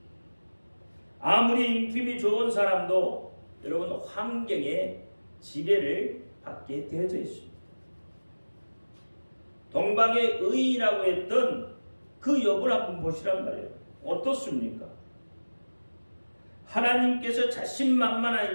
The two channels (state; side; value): inverted; both; correlation -1.00